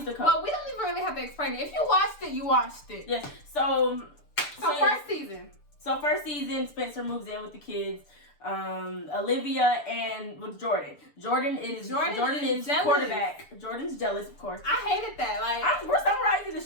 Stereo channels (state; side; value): late; right; 6.8 ms